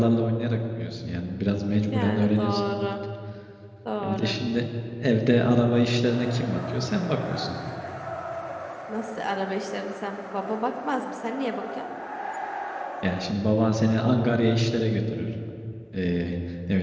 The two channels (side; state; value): both; identical; correlation 1.00